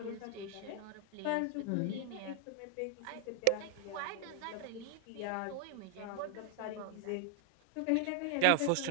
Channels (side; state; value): both; different; correlation 0.00